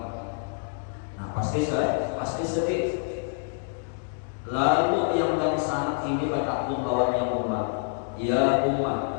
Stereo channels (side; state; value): right; silent; digital silence